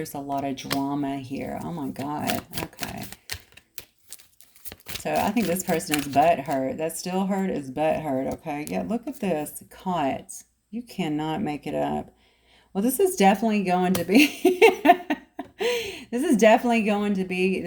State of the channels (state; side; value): identical; both; correlation 1.00